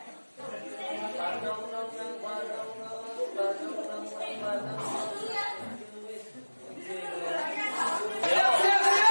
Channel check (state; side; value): inverted; both; correlation -1.00